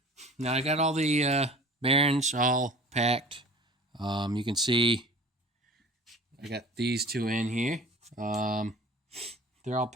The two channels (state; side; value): normal; both; correlation 0.43